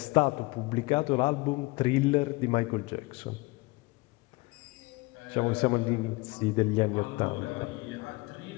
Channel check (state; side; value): quieter; right; 23.9 dB